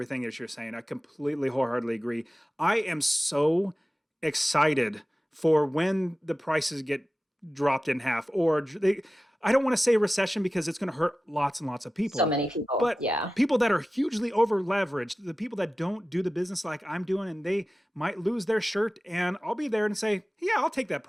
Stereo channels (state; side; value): normal; both; correlation 0.95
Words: that you're saying. I completely wholeheartedly agree. I am so excited for when the prices get dropped in half, or they, I don't want to say recession because it's going to hurt lots and lots of So people, many people. but Yeah. people that are hugely over leveraged, the people that don't do the business like I'm doing, and they might lose their shirt, and I'll be there and say, yeah, I'll take that